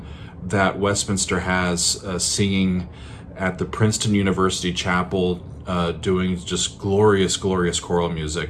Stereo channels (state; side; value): identical; both; correlation 1.00